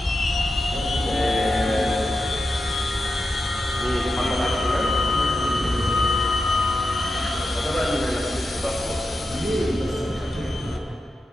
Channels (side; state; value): both; normal; correlation 0.89